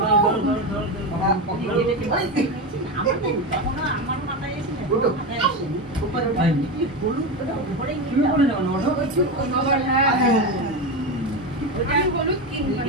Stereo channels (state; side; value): normal; both; correlation 0.17